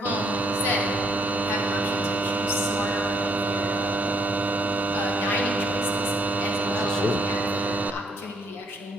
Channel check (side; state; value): both; normal; correlation 0.69